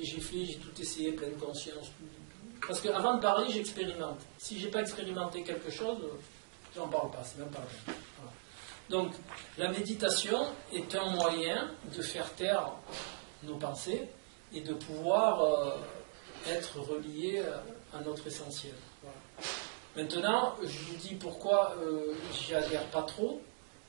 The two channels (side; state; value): left; silent; digital silence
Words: tout essayé, pleine conscience. Parce qu'avant de parler, j'expérimente. Si j'ai pas expérimenté quelque chose, j'en parle pas, c'est même pas la peine. Voilà. Donc, la méditation est un moyen de faire taire nos pensées et de pouvoir être relié à notre essentiel. Voilà. Maintenant, je vous dis pourquoi j'y adhère pas trop,